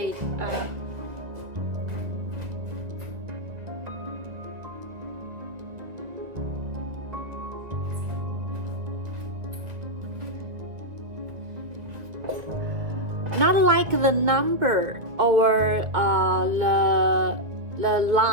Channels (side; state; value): left; late; 1.9 ms